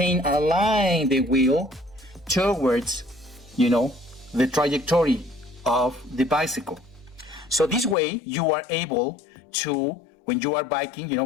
the wheel towards, the trajectory of the bicycle. So this way you are able to, when you are biking,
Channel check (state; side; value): drops out; right; at 8.0 s